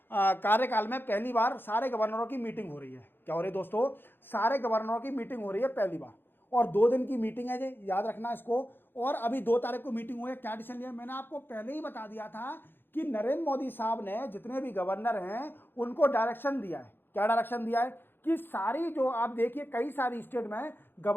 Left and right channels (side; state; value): right; late; 0.10 ms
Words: कार्यकाल में पहली बार सारे गवर्नरों की मीटिंग हो रही है। क्या हो रही है दोस्तों, सारे गवर्नरों की मीटिंग हो रही है पहली बार, और 2 दिन की मीटिंग है जी, याद रखना इसको। और अभी 2 तारीख को मीटिंग हुई है। क्या डिसीजन लिया, मैंने आपको पहले ही बता दिया था कि नरेंद्र मोदी साहब ने जितने भी गवर्नर हैं उनको डायरेक्शन दिया है। क्या डायरेक्शन दिया है कि सारी जो आप देखिए कई सारी स्टेट में